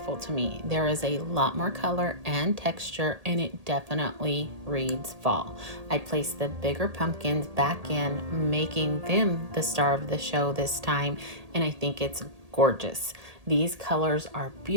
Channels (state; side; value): late; left; 1.8 ms